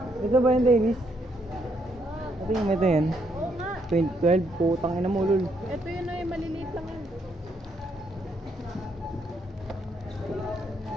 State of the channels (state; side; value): normal; both; correlation 0.74